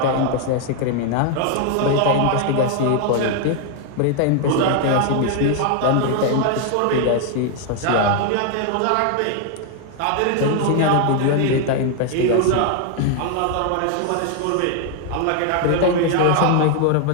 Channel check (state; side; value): different; both; correlation 0.00